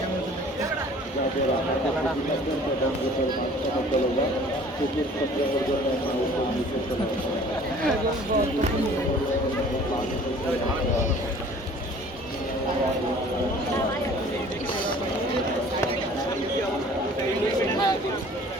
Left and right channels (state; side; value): normal; both; correlation 0.50